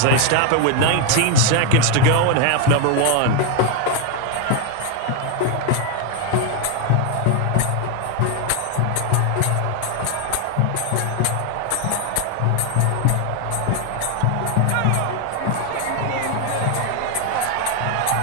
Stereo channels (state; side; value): different; both; correlation 0.01